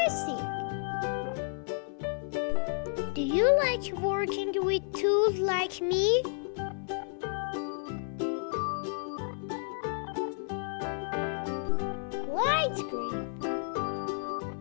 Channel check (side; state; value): right; silent; 56 dB below the other